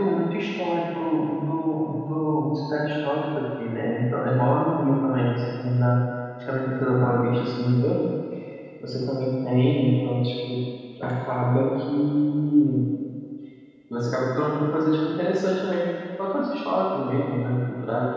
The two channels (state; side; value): identical; both; correlation 1.00